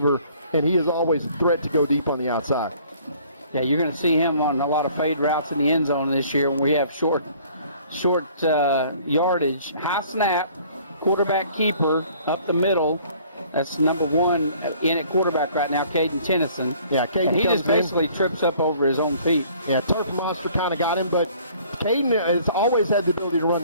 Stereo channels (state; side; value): inverted; both; correlation -0.56